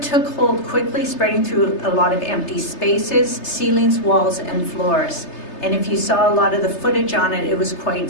hold quickly, spreading through a lot of empty spaces, ceilings, walls, and floors. And if you saw a lot of the footage on it, it was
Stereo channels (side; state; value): right; late; 3.3 ms